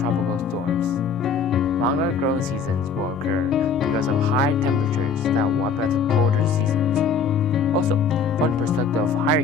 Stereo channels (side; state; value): right; quieter; 5.3 dB